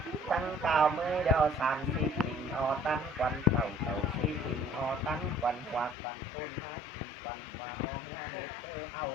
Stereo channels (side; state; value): right; drops out; at 6.0 s